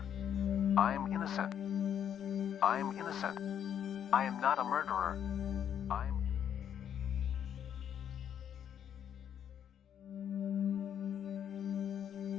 I am innocent. I am innocent. I am not a murderer. I am...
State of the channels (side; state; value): right; quieter; 9.2 dB